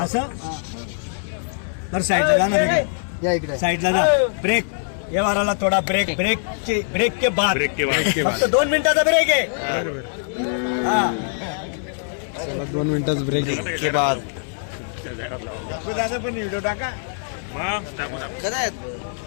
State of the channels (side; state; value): right; silent; digital silence